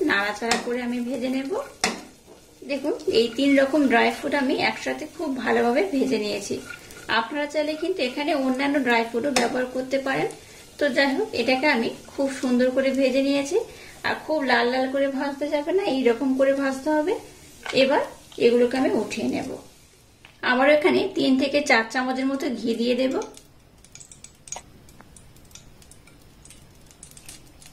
নাড়াচাড়া করে আমি ভেজে নেব। দেখুন এই 3 রকম ড্রাই ফ্রুট আমি একসাথে খুব ভালোভাবে ভেজে নিয়েছি। আপনারা চাইলে কিন্তু এখানে অন্যান্য ড্রাই ফ্রুটও ব্যবহার করতে পারেন। তো যাই হোক, এটাকে আমি খুব সুন্দর করে ভেজে নিয়েছি। আর খুব লাল লাল করে ভাজতে যাবে না, এইরকম করে ভাজতে হবে। এবার এগুলোকে আমি উঠিয়ে নেব। আবার এখানে 3 থেকে 4 চামচের মতো ঘি দিয়ে দেব।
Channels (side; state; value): both; identical; correlation 1.00